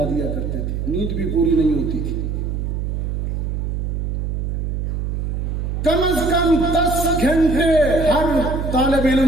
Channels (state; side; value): noise; right; hum, 2 dB below the sound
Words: دیا کرتے تھے، نیند بھی پوری نہیں ہوتی تھی. کم از کم 10 گھنٹے ہر طالب